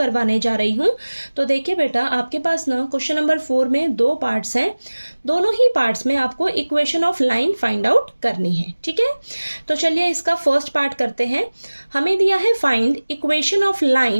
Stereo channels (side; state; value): both; inverted; correlation -1.00